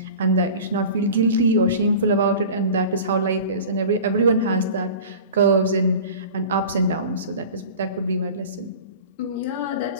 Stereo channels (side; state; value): both; inverted; correlation -0.38